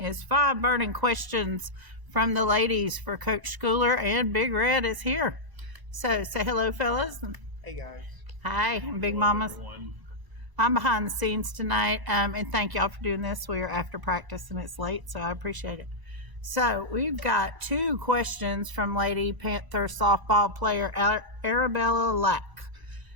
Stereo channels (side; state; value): left; late; 1.0 ms